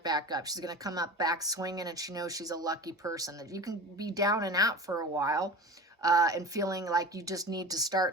back up. She's going to come up back swinging, and she knows she's a lucky person. That you can be down and out for a while, and feeling like you just need to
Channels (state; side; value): normal; both; correlation 0.33